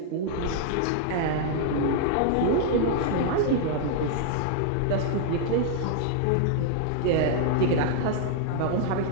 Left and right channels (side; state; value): both; different; correlation -0.01